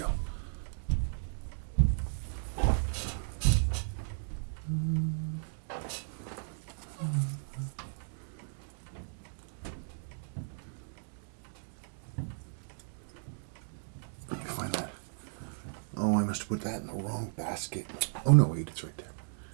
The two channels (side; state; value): left; silent; digital silence